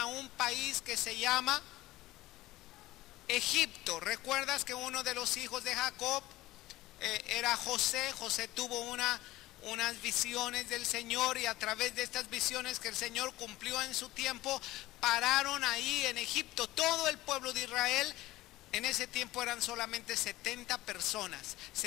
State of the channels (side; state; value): right; quieter; 17.7 dB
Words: un país que se llama Egipto. ¿Recuerdas que uno de los hijos de Jacob era José? José tuvo unas visiones del Señor, y a través de estas visiones que el Señor cumplió en su tiempo, pararon ahí en Egipto. Todo el pueblo de Israel, en ese tiempo eran solamente 70 personas.